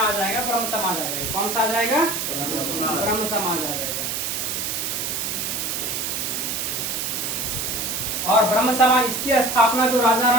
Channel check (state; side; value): noise; right; hiss, 2 dB below the sound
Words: आ जाएगा ब्रह्म समाज आ जाएगा। कौन सा आ जाएगा? ब्रह्म समाज आ जाएगा। और ब्रह्म समाज इसकी स्थापना जो